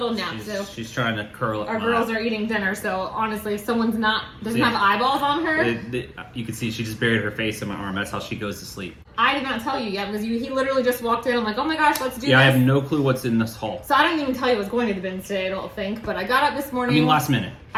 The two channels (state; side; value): identical; both; correlation 1.00